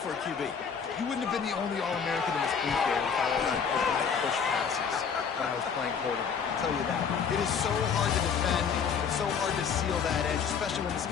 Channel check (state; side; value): quieter; right; 6.6 dB